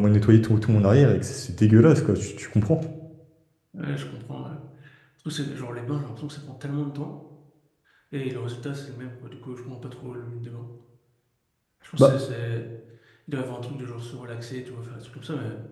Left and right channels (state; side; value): identical; both; correlation 1.00